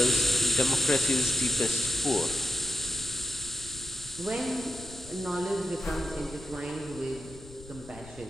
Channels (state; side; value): noise; left; rumble, 19 dB below the sound